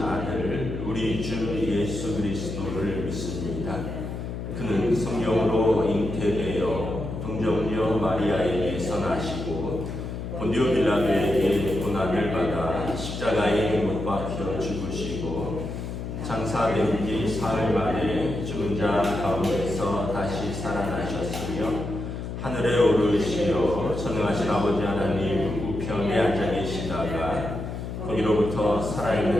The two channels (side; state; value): left; noise; hum, 6 dB below the sound